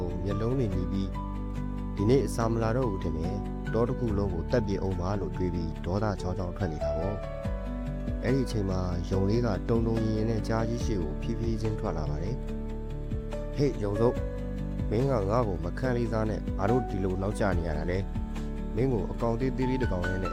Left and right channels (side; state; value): both; identical; correlation 1.00